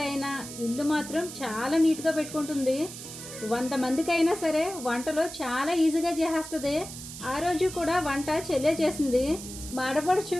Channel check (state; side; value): noise; right; hiss, 11 dB below the sound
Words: ఇల్లు మాత్రం చాలా నీట్‌గా పెట్టుకుంటుంది. 100 మందికైనా సరే వంటలో చాలా ఈజీగా చేసేస్తది. ఆ రోజు కూడా వంట చెల్లే చేసింది. మాడపడుచు